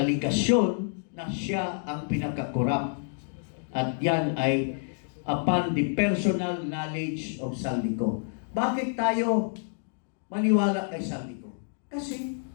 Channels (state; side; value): silent; right; digital silence